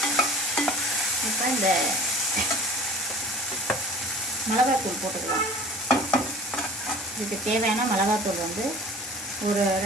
இப்போ இந்த மிளகாத்தூள் போட்டுக்கலாம். இதுக்கு தேவையான மிளகாத்தூள் வந்து ஒரு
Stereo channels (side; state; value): both; normal; correlation 0.44